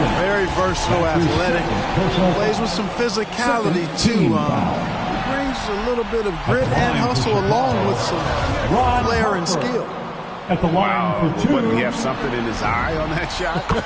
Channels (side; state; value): both; identical; correlation 1.00